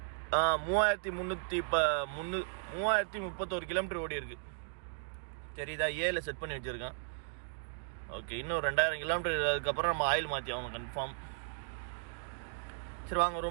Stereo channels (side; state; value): left; silent; digital silence